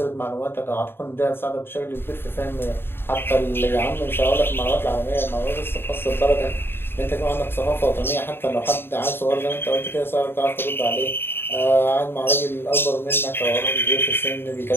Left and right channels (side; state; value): right; late; 0.11 ms